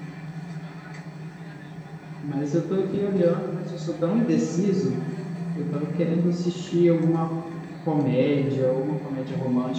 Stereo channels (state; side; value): identical; both; correlation 1.00